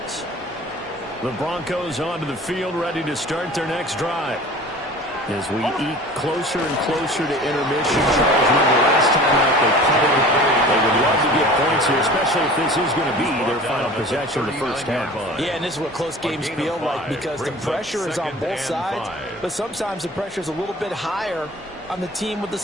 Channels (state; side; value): normal; both; correlation 0.42